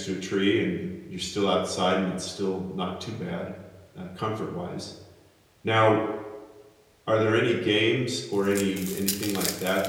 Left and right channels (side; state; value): both; identical; correlation 1.00